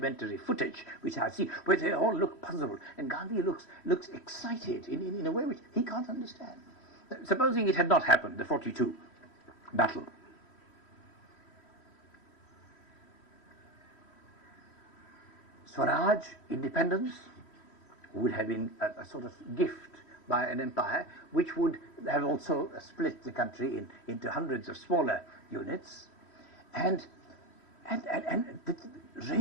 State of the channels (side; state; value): right; late; 3.1 ms